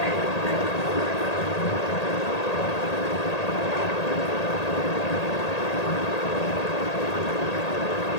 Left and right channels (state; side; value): late; right; 1.8 ms